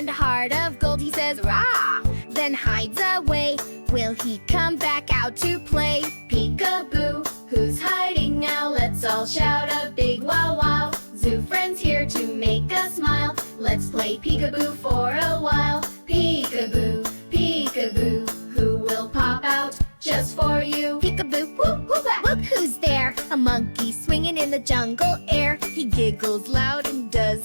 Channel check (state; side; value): inverted; both; correlation -1.00